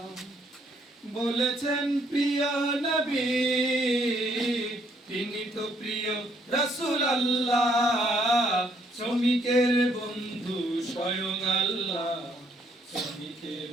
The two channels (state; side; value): normal; both; correlation 0.68